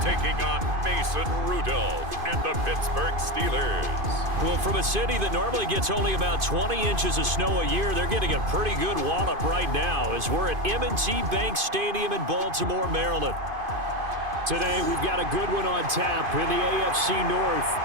taking on Mason Rudolph and the Pittsburgh Steelers. Well, from a city that normally gets only about 20 inches of snow a year, they're getting a pretty good wallop right now as we're at M&T Bank Stadium in Baltimore, Maryland. Today, we've got a good one on tap in the AFC North,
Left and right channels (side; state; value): left; late; 2.5 ms